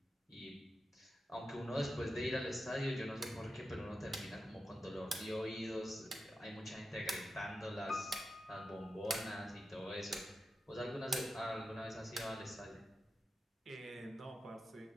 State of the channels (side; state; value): both; normal; correlation 0.89